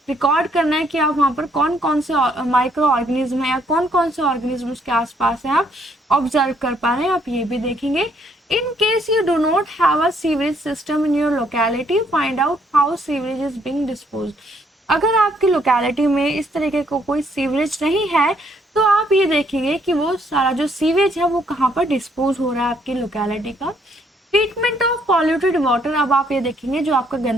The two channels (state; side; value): normal; both; correlation 0.68